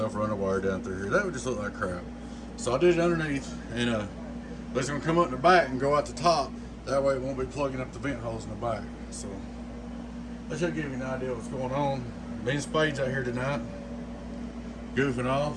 run a wire down through here. That would just look like crap. So I did it underneath, and it's gonna come up in the back and go out the top. That way it won't be plugging up the vent holes in the back. So that should give you an idea of what's going on. Me and Spade's out here tonight, goofing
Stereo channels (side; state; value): both; identical; correlation 1.00